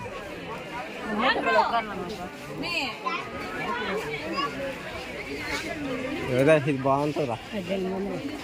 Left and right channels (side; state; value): both; identical; correlation 1.00